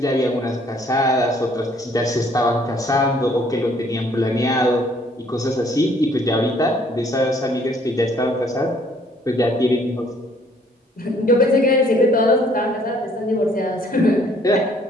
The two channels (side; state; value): both; normal; correlation 0.62